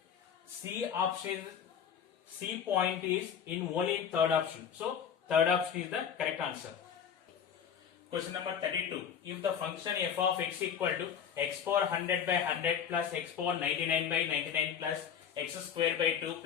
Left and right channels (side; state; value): right; quieter; 8.0 dB